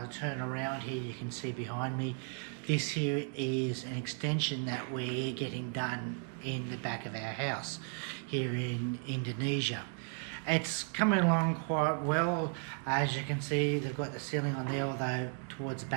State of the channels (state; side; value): quieter; left; 38.7 dB